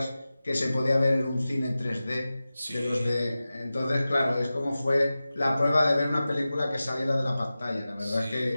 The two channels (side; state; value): both; inverted; correlation -0.95